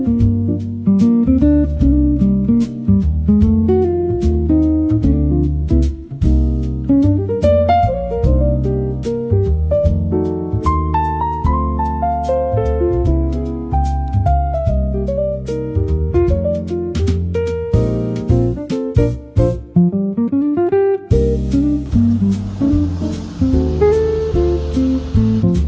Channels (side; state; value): both; identical; correlation 1.00